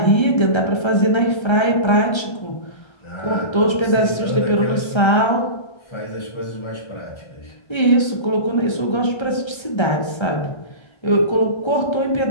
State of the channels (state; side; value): late; right; 1.3 ms